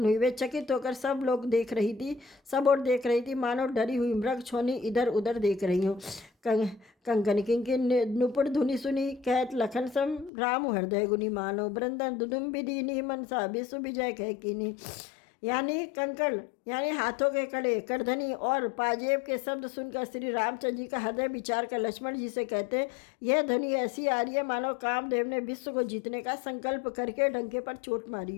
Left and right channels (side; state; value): right; drops out; at 10.3 s